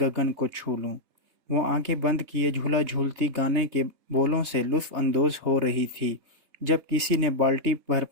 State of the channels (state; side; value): late; left; 3.2 ms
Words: को छू लूं। वो आंखें बंद किए झूला झूलती गाने के बोलों से लुत्फ अंदोज हो रही थी जब किसी ने बाल्टी भर